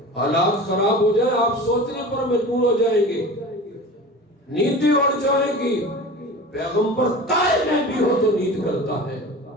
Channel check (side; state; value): both; normal; correlation 0.35